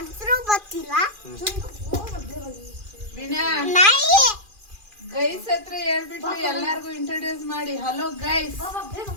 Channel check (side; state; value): left; late; 2.4 ms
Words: ಗೊತ್ತಿಲ್ಲ. ವಿನಾ ನಾಯಿ ಗೈಸ್ ಹತ್ರ ಹೇಳ್ಬಿಟ್ಟು ಎಲ್ಲಾರ್ಗು ಇಂಟ್ರೊಡ್ಯೂಸ್ ಮಾಡಿ. ಹಲೋ ಗೈಸ್,